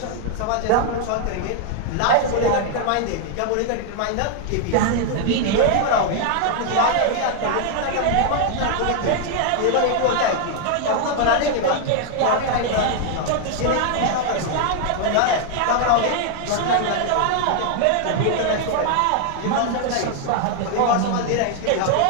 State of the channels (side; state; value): both; different; correlation 0.00